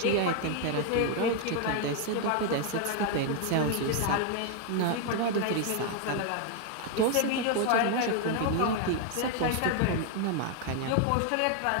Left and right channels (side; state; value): both; different; correlation 0.00